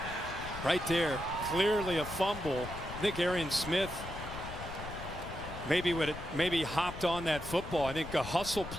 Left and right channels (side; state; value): left; noise; rumble, 10 dB below the sound